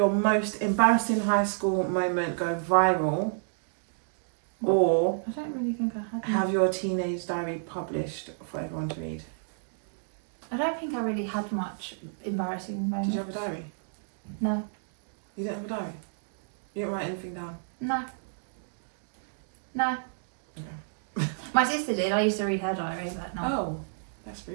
most embarrassing high school moment go viral, or I don't really think I had. have your teenage diary published for everyone to read? I don't think I really had much embarrassing moments. Did you have a diary? No. You didn't have a diary? You didn't write anything down? No. Okay. My sister did. I used to read her diary, but no. Oh, that's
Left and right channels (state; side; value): silent; left; digital silence